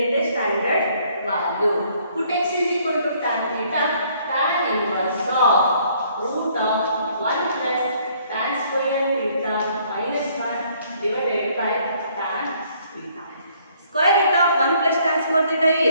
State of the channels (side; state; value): both; inverted; correlation -0.64